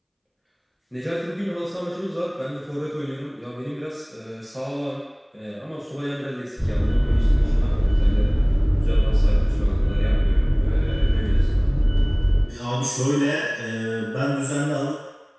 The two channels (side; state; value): both; identical; correlation 1.00